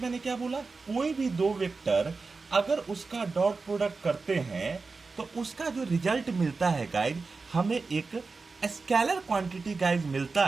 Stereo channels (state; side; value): quieter; left; 4.2 dB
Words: मैंने क्या बोला, कोई भी दो वेक्टर अगर उसका डॉट प्रोडक्ट करते हैं तो उसका जो रिजल्ट मिलता है गाइज हमें एक स्केलर क्वांटिटी गाइज मिलता